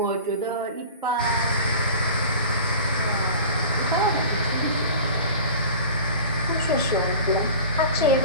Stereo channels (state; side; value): inverted; both; correlation -0.38